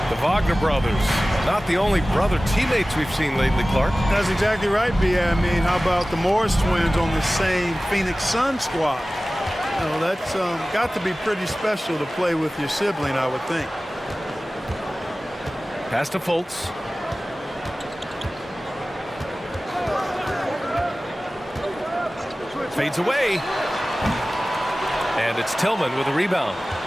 The Wagner brothers, not the only brother teammates we've seen lately, Clark. That's exactly right, B.A. I mean, how about the Morris twins on the same Phoenix Sun squad? You know, that's got to be pretty special to play with your sibling, I would think. Pass to Fultz. Fades away. And it's Tillman with a rebound.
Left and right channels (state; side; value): normal; both; correlation 0.97